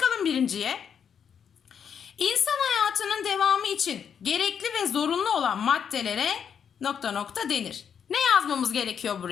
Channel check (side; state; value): right; quieter; 7.6 dB